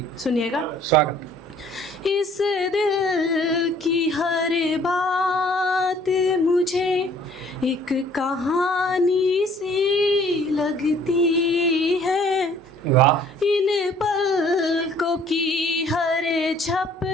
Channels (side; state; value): both; normal; correlation 0.57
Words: सुनिएगा। स्वागत। इस दिल की हर बात मुझे एक कहानी सी लगती है। वाह। इन पलकों की हर